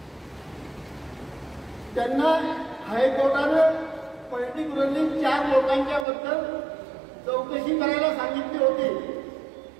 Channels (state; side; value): drops out; left; at 6.1 s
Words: त्यांना हायकोर्टानं पर्टिक्युलरली 4 लोकांच्या बद्दल चौकशी करायला सांगितली होती.